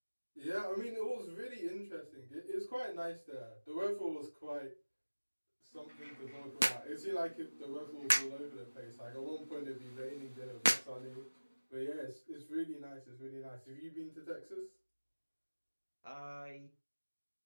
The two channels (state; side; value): inverted; both; correlation -1.00